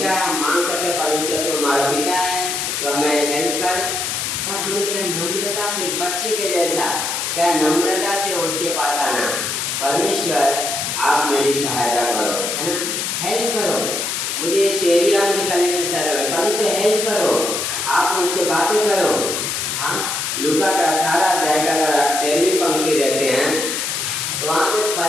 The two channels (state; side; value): noise; left; hiss, 2 dB below the sound